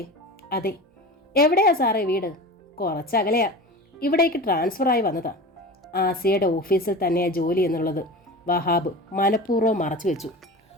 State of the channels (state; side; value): normal; both; correlation 0.32